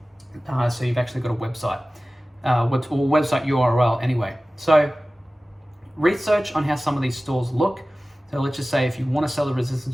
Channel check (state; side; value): normal; both; correlation 0.97